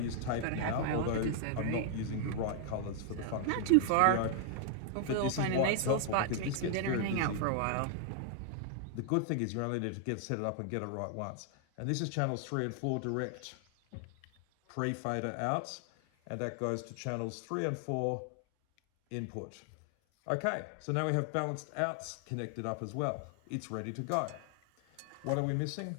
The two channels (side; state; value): both; different; correlation 0.00